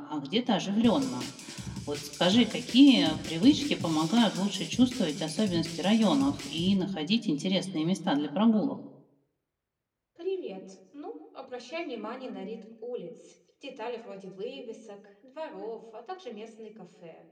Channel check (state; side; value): identical; both; correlation 1.00